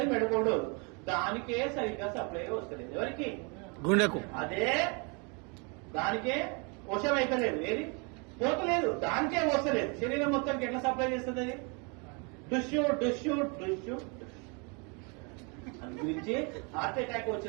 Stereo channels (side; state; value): left; quieter; 33.2 dB